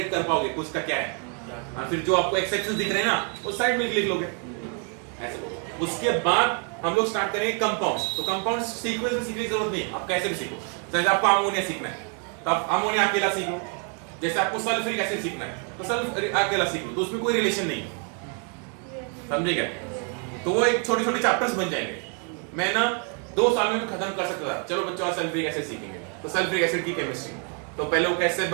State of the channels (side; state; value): left; quieter; 39.7 dB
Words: कर पाओगे कुछ का क्या है। फिर जो आपको एक्सेप्शंस दिख रहे हैं ना, वो साइड में लिख लोगे ऐसे बोलो। उसके बाद हम लोग स्टार्ट करेंगे कंपाउंड्स। तो कंपाउंड्स सीक्वेंस में सीखने की जरूरत नहीं, आप कैसे भी सीखो। जैसे आपको अमोनिया सीखना है तो आप अमोनिया अकेला सीखो। जैसे आपको सल्फ्यूरिक एसिड सीखना है तो सल्फ्यूरिक अकेला सीखो, तो उसमें कोई रिलेशन नहीं है, समझे क्या? तो वो एक छोटे छोटे चैप्टर्स बन जाएंगे। मैं ना 2 साल में भी खत्म कर सकता था। चलो बच्चों, सल्फ्यूरिक एसिड सीखेंगे तो सल्फ्यूरिक एसिड की केमिस्ट्री, तो पहले वो कैसे